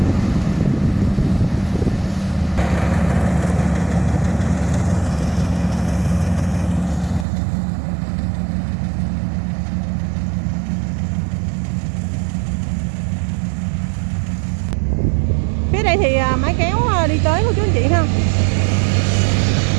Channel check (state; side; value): drops out; left; at 7.2 s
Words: Phía đây thì máy kéo đi tới của chú anh chị ha.